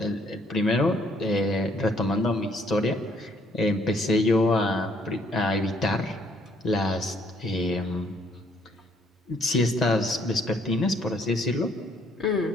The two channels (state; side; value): normal; both; correlation 0.66